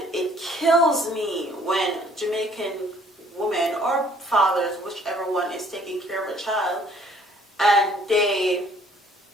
it kills me when Jamaican women or fathers, whichever one is taking care of a child, and they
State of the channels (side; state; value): both; normal; correlation 0.60